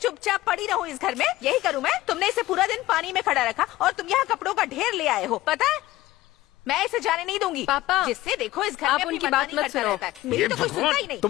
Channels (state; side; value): quieter; right; 16.8 dB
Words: चुपचाप पड़ी रहूँ इस घर में? यही करूँ मैं? तुमने इसे पूरा दिन पानी में खड़ा रखा और तुम यहाँ कपड़ों का ढेर ले आए हो, पता है? मैं इसे जाने नहीं दूंगी। पापा, जिससे देखो इस घर आप में अपनी उनकी बात मनमानी मत करता सुनो। रहता है। मेरी तो कुछ सुनता ही नहीं।